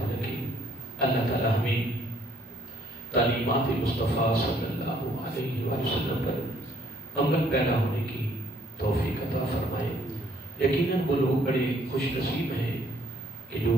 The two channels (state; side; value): normal; both; correlation 0.64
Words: رکھے۔ اللہ تعالی ہمیں تعلیمات مصطفیٰ صلی اللہ علیہ وسلم پر عمل پیدا ہونے کی توفیق عطا فرمائے۔ یقیناً وہ لوگ بڑے خوش نصیب ہیں کہ جو